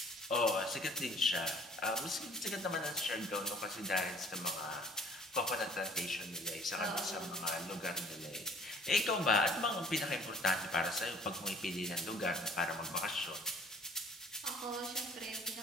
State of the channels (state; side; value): normal; both; correlation 0.54